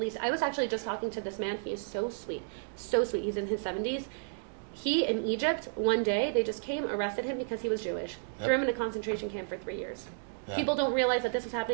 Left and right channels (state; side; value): silent; left; digital silence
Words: East. I was actually just talking to this man. He is so sweet. So sweet. He's in his 70s. He, in Egypt, one day, they just came, arrested him because he was Jewish. Threw him in a concentration camp for 3 years. Yeah. People don't realize that this was